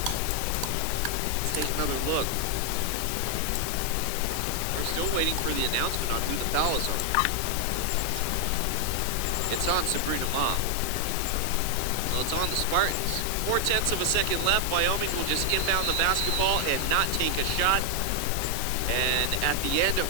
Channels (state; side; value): different; both; correlation 0.00